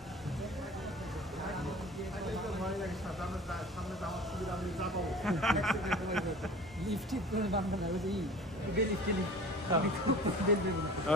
সামনে যাওয়ার সুবিধা আমি যাবো লিফট ঠিক করে বানানো না ওই যে লিফট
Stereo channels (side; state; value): both; normal; correlation 0.42